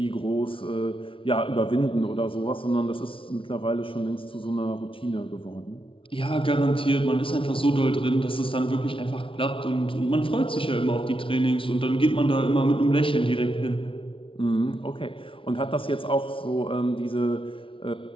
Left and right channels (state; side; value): late; right; 0.25 ms